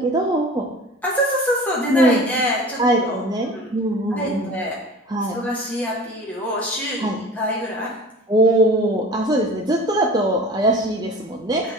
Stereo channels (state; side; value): normal; both; correlation 0.40